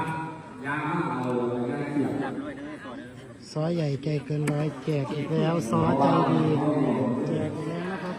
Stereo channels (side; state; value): both; identical; correlation 1.00